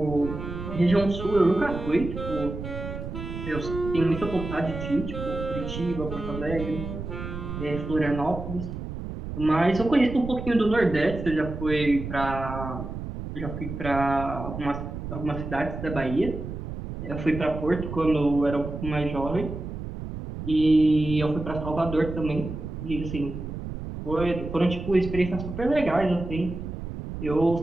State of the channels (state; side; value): noise; right; rumble, 7 dB below the sound